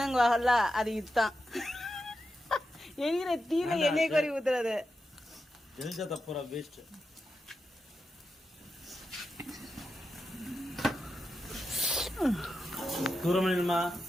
வாங்கல, அது இதுதான். எரியிற தீல எண்ணெய் கொறி ஊத்துறது எரிஞ்சா தப்புறா வேஸ்ட். தூரமா நில்லுமா.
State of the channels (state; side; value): normal; both; correlation 0.88